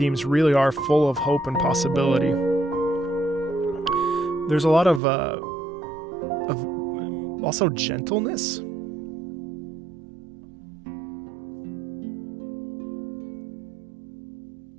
really are full of hope and possibility. There's a lot of also gentleness.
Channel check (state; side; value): drops out; left; at 5.0 s